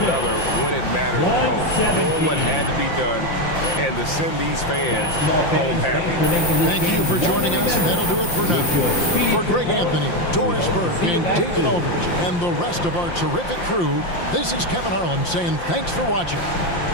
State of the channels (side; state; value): right; late; 5.8 ms